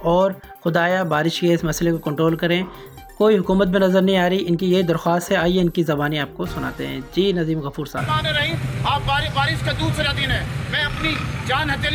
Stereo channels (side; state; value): both; identical; correlation 1.00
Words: اور خدایا بارش کے اس مسئلے کو کنٹرول کریں۔ کوئی حکومت میں نظر نہیں آ رہی، ان کی یہ درخواست ہے، آئیے ان کی زبانی آپ کو سناتے ہیں۔ جی ندیم غفور صاحب۔ آپ بارش کا دوسرا دن ہے، میں اپنی جان